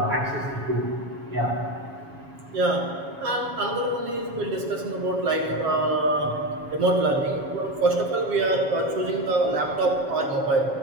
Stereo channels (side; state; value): left; late; 7.2 ms